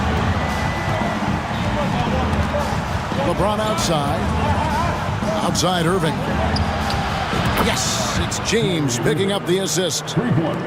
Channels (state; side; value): identical; both; correlation 1.00